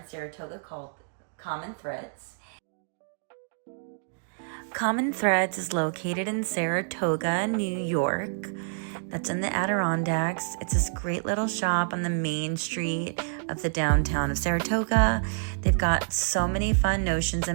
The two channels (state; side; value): silent; left; digital silence